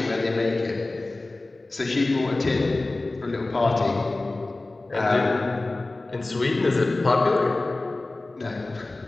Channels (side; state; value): right; quieter; 3.0 dB